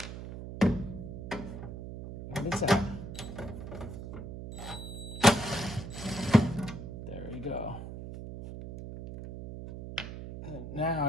This out. There we go. And now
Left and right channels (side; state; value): right; noise; hum, 9 dB below the sound